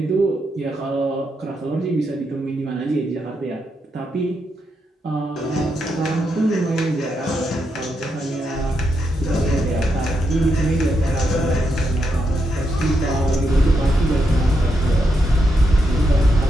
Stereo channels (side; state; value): both; normal; correlation 0.82